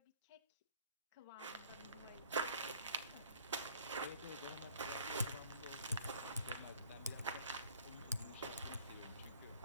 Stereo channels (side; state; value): both; inverted; correlation -0.54